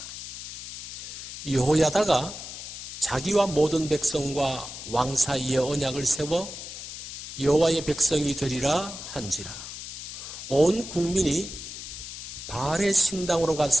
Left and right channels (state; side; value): noise; left; hiss, 10 dB below the sound